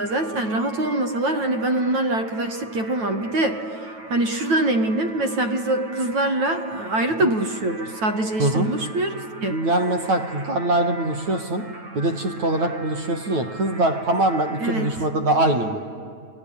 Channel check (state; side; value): late; left; 9.2 ms